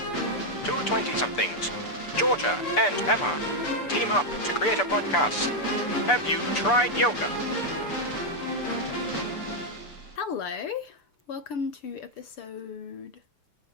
Two 20-somethings, Georgia and Emma, team up to create a podcast. Have you tried yoga? Hello, welcome to episode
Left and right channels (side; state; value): right; late; 6.8 ms